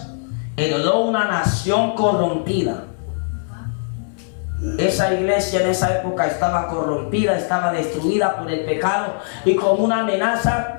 heredó una nación corrompida. Esa iglesia en esa época estaba corrompida, estaba destruida por el pecado, y como una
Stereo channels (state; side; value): silent; right; digital silence